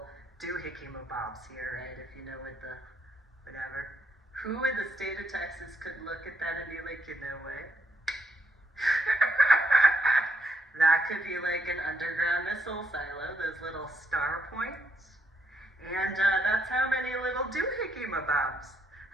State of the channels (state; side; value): normal; both; correlation 0.74